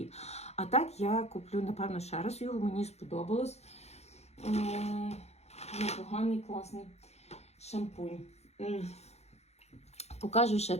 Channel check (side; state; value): right; late; 0.31 ms